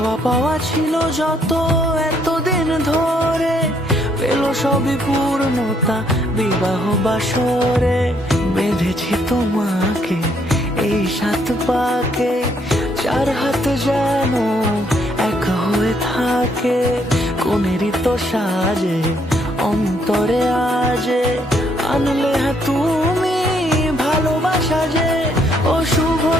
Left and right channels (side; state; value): both; normal; correlation 0.70